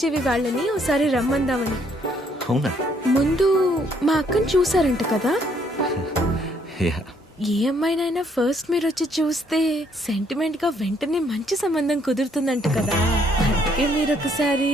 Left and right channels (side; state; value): both; normal; correlation 0.68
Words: వాళ్ళని ఒకసారి రమ్మందామని. అవునా? ముందు మా అక్కని చూసారంట కదా. యా. ఏ అమ్మాయినైనా ఫస్ట్ మీరు వచ్చి చూస్తే సెంటిమెంట్ గా వెంటనే మంచి సంబంధం కుదురుతుందంట కదా. అందుకే మీరు ఒకసారి